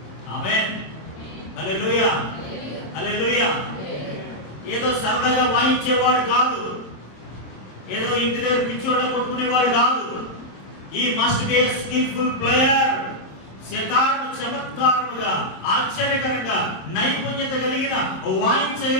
ఆమేన్, హల్లెలూయా, హల్లెలూయా. ఏదో సరదాగా వాయించేవాడు కాదు, ఏదో ఇంటి దగ్గర పిచ్చోళ్ళ కొట్టుకునేవాడు కాదు. ఈ must be a skillful player. సితారను చమత్కారముగా, ఆశ్చర్యకరంగా, నైపుణ్యత కలిగిన,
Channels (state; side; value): late; right; 27 ms